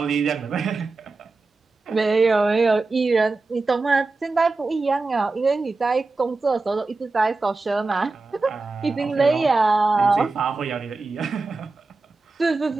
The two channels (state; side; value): quieter; left; 3.6 dB